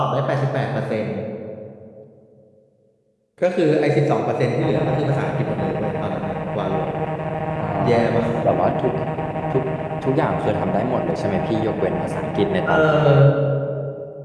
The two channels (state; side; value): identical; both; correlation 1.00